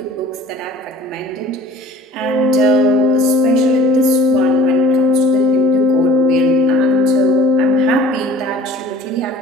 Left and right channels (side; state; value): both; normal; correlation 0.47